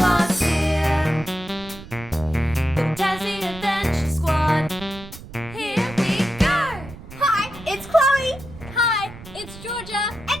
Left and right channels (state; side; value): noise; right; rumble, 16 dB below the sound